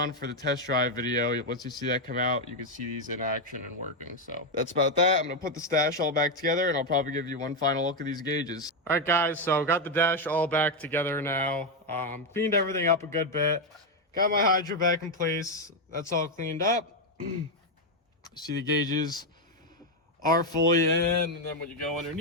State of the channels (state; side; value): normal; both; correlation 0.05